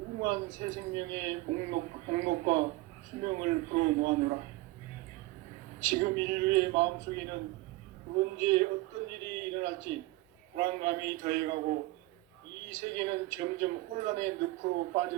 새 생명의 목록과 수명을 풀어놓아노라. 지금 인류의 마음속에는 언제 어떤 일이 일어날지 불안감이 더해가고 이 세계는 점점 혼란의 늪으로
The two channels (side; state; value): left; quieter; 20.0 dB